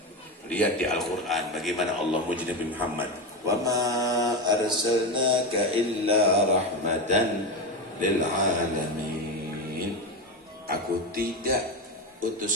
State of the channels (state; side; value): normal; both; correlation 0.17